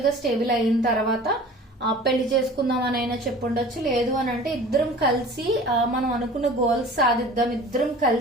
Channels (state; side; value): normal; both; correlation 0.43